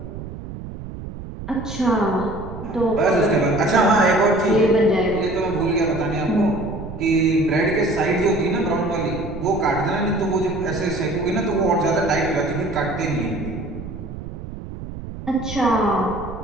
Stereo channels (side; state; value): right; noise; rumble, 10 dB below the sound